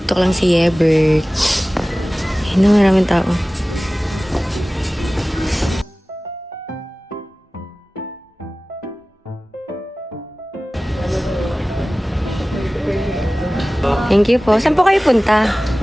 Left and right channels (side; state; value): both; normal; correlation 0.97